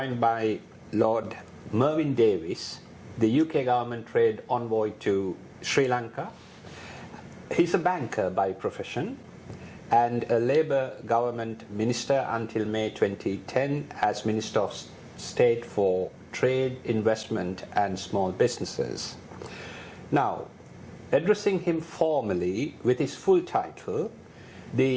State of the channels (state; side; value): identical; both; correlation 1.00